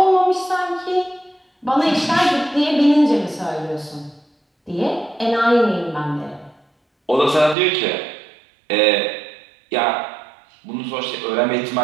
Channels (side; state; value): left; drops out; at 7.6 s